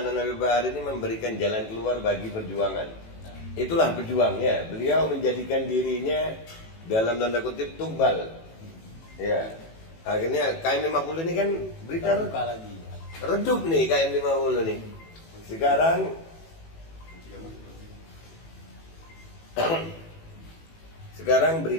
Habib Bahar ini memberikan jalan keluar bagi perjuangan. Itulah pejuangnya. Beliau menjadikan dirinya dalam tanda kutip tumbal. Ya. Akhirnya KM 50 ini kan berita lagi. Redup nih KM 50 nih. Sekarang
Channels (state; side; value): late; right; 18 ms